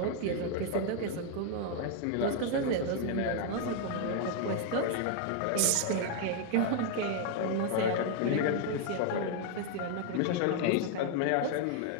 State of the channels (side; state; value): both; different; correlation 0.00